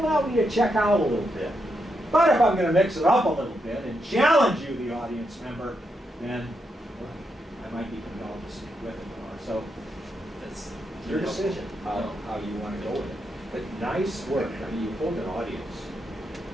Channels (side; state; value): both; normal; correlation 0.82